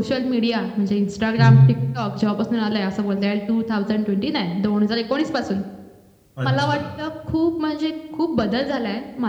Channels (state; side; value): identical; both; correlation 1.00